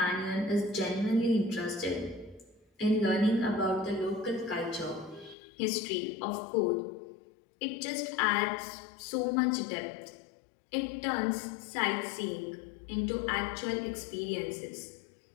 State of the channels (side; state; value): right; drops out; at 5.4 s